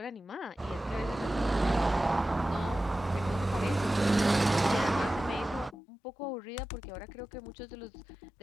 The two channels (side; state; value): right; drops out; at 5.8 s